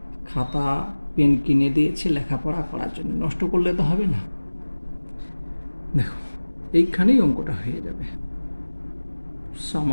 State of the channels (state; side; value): inverted; both; correlation -1.00